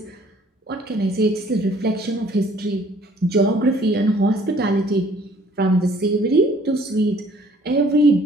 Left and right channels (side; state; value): both; normal; correlation 0.58